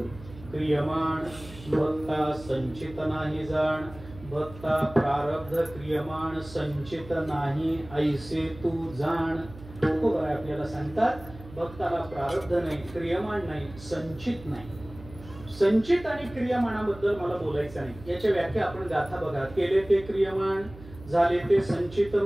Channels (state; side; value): noise; right; hum, 17 dB below the sound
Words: क्रियमाण भक्ता संचित नाही जाण. भक्ता प्रारब्ध क्रियमाण संचित नाही ऐसे तू जाण. तुकोबाराय आपल्याला सांगतात भक्ताला प्रारब्ध नाही, क्रियमाण नाही, संचित नाही. संचित आणि क्रियमाणाबद्दल मला बोलायचं नाही, याच्या व्याख्या आपण गाथा बघा. केले ते क्रियमाण, झाले ते संचित